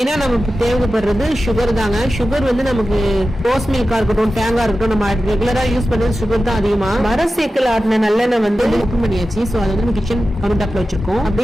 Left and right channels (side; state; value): both; normal; correlation 0.93